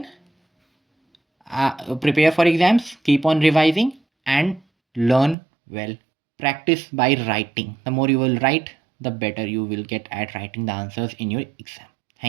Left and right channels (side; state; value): left; drops out; at 5.4 s